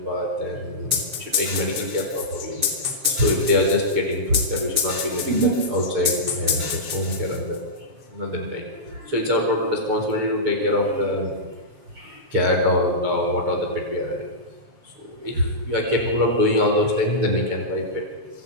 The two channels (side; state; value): left; late; 7.4 ms